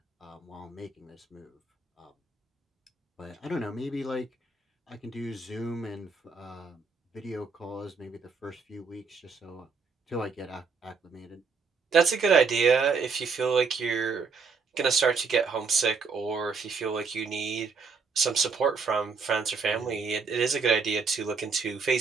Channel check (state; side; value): quieter; left; 4.8 dB